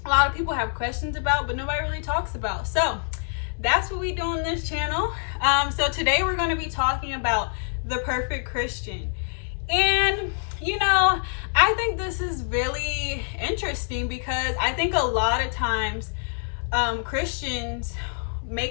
a lot of people have questions about but nobody really talks about. So that's what we do on this channel. So today we're going to be talking about the perfect Christian. And I think this is really interesting because I think a lot of times Christians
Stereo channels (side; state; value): right; silent; 61 dB below the other